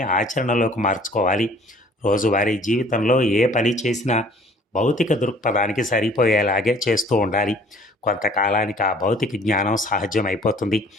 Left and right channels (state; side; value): normal; both; correlation 0.54